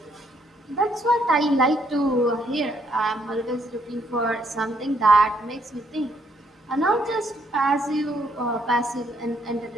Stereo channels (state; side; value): normal; both; correlation 0.71